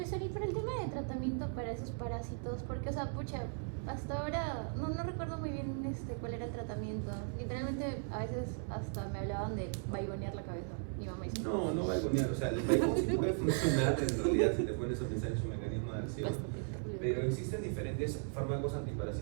y para el tema de tratamiento para esos parásitos, porque, o sea, pucha, hasta ahora no recuerdo muy bien cuál era el tratamiento. Literalmente, a veces hasta me hablaban de vaigonear la cabeza. Mi mamá dice: No vaigonear, o sea, el vaigón sí puede funcionar en realidad si te pones a pensar en su mecanismo de acción. Pero existen diferentes fármacos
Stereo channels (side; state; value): left; silent; 53 dB below the other